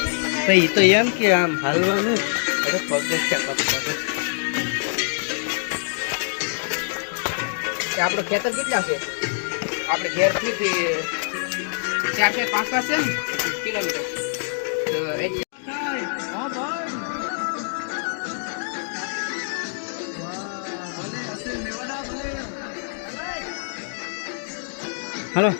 તો એમ કે આમ હાલવાનું આપણો ખેતર કેટલા છે? આપણે ઘેરથી 4-5 છે ને કિલોમીટર. હલો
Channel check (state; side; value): silent; right; digital silence